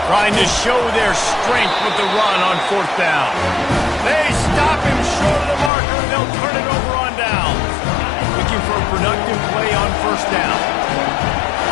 Trying to show their strength with the run on 4th down. They stop him short of the marker, and they'll turn it over on down. Looking for a productive play on 1st down.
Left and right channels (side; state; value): right; drops out; at 5.7 s